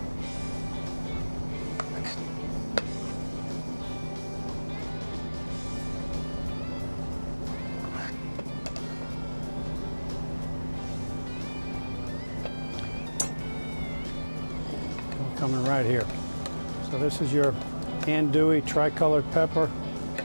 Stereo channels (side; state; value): both; inverted; correlation -1.00